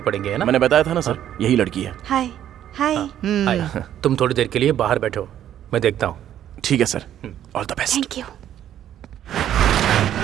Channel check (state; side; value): quieter; left; 11.0 dB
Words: है ना? मैंने बताया था ना सर, यही लड़की है। हाय हाय। हाय, तुम थोड़ी देर के लिए बाहर बैठो, मैं देखता हूँ। ठीक है sir, all the best. Thank you